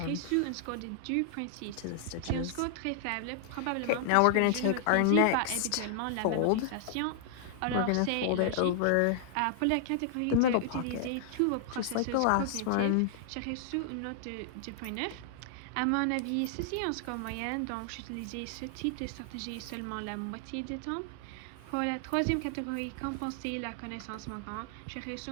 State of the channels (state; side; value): different; both; correlation -0.01